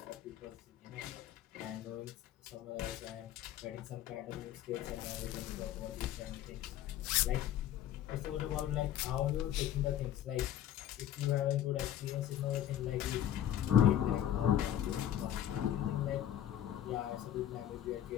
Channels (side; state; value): right; quieter; 11.4 dB